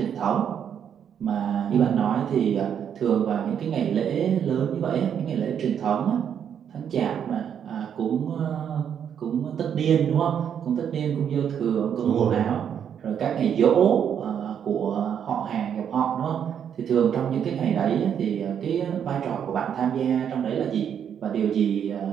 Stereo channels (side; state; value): left; quieter; 8.5 dB